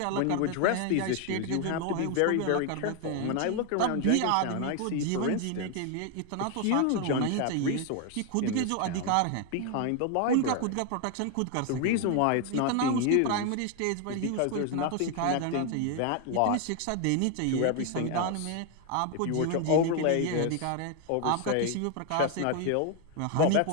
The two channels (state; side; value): different; both; correlation 0.01